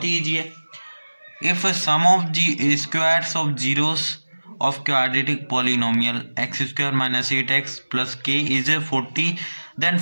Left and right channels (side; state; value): both; inverted; correlation -1.00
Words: ही ईजी है। If sum of the squares of zeros of quadratic polynomial x square minus 8x plus k is 40, then